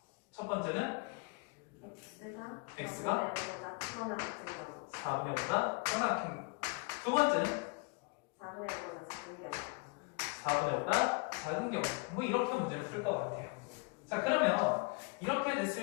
첫 번째는 x가 4분의 5보다 커나 큰 거. 두 번째는 4분의 5보다 작은 경우. 뭐 이렇게 문제를 풀 것 같아요. 자, 그러면 이렇게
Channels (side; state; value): right; quieter; 30.5 dB